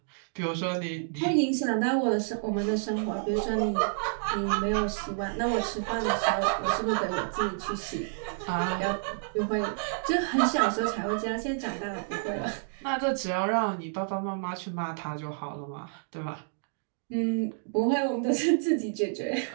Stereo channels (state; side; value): silent; left; digital silence